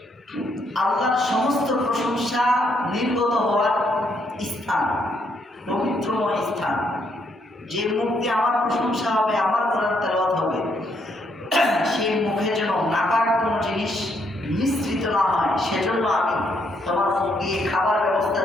আল্লাহর সমস্ত প্রশংসা নির্গত হওয়ার স্থান, পবিত্রময় স্থান। যে মুখ দিয়ে আমার প্রশংসা হবে, আমার কোরআন তেলাওয়াত হবে, সেই মুখে যেন নাপাক কোনো জিনিস মিশ্রিত না হয়, সেজন্য আমি তোমার মুখ দিয়ে খাবার ব্যবস্থা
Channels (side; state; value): both; normal; correlation 0.74